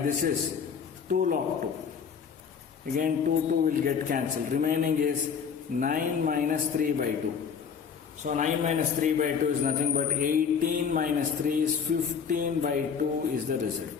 is 2 log 2. Again 2 will get cancelled. Remaining is 9 minus 3 by 2. So 9 minus 3 by 2 is nothing but 18 minus 3 is 15 by 2 is the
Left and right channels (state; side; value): quieter; right; 6.7 dB